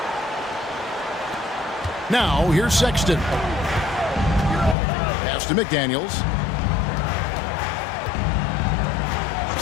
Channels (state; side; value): drops out; right; at 4.8 s